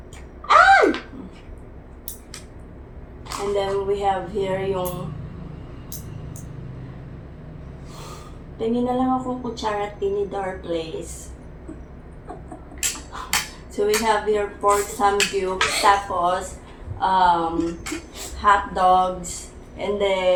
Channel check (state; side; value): identical; both; correlation 1.00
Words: And then we have here yung tingin na lang akong kutsara tinidor place. So we have here pork samgyup, tapos hot dogs, and